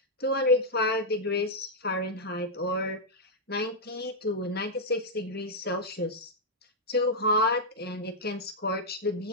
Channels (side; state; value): both; normal; correlation -0.05